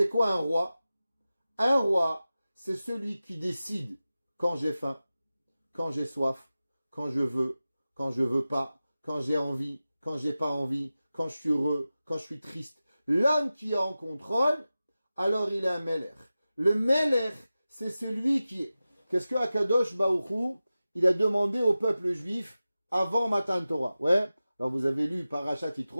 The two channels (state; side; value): inverted; both; correlation -0.95